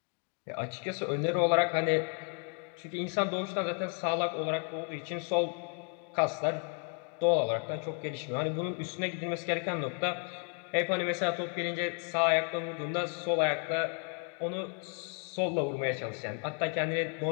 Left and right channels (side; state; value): right; quieter; 38.2 dB